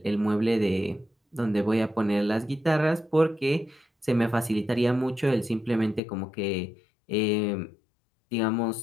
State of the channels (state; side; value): drops out; right; at 6.0 s